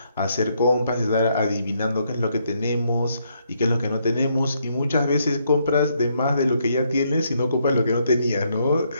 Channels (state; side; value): inverted; both; correlation -0.74